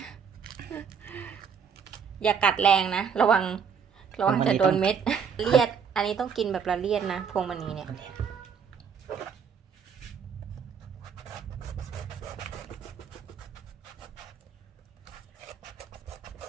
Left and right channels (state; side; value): quieter; left; 6.8 dB